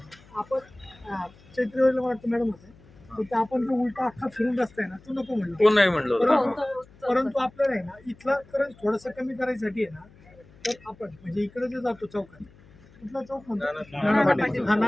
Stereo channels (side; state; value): left; noise; hum, 25 dB below the sound